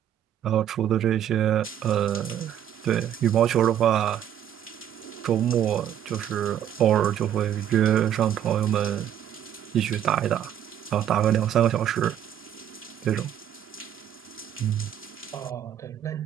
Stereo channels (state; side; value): quieter; left; 10.3 dB